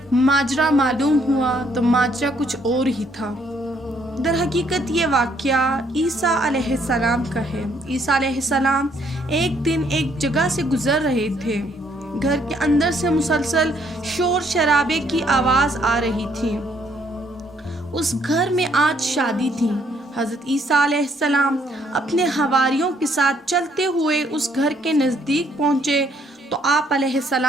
ماجرا معلوم ہوا تو ماجرا کچھ اور ہی تھا۔ در حقیقت یہ واقعہ عیسیٰ علیہ السلام کا ہے۔ عیسیٰ علیہ السلام ایک دن ایک جگہ سے گزر رہے تھے۔ گھر کے اندر سے مسلسل شور شرابے کی آواز آ رہی تھی۔ اس گھر میں آج شادی تھی۔ حضرت عیسیٰ علیہ السلام اپنے حواریوں کے ساتھ چلتے ہوئے اس گھر کے نزدیک پہنچے تو آپ علیہ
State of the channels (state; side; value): normal; both; correlation 0.68